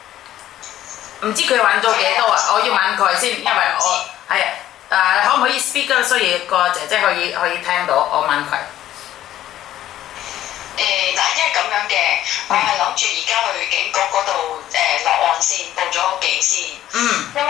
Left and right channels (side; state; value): right; quieter; 12.9 dB